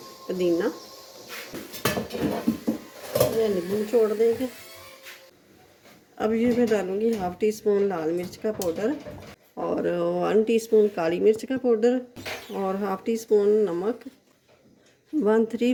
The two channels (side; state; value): both; identical; correlation 1.00